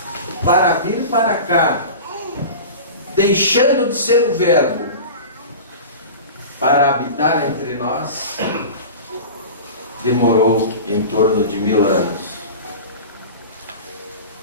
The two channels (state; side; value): inverted; both; correlation -0.33